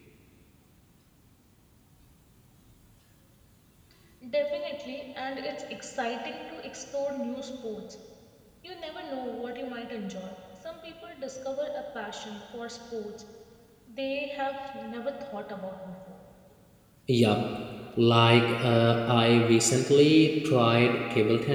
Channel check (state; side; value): identical; both; correlation 1.00